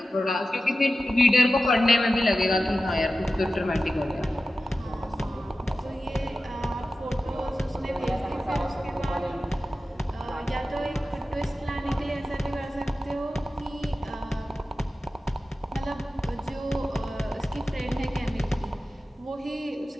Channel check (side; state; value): both; normal; correlation 0.94